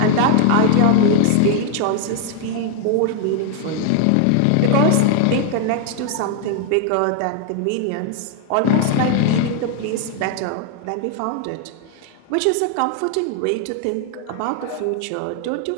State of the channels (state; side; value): different; both; correlation 0.01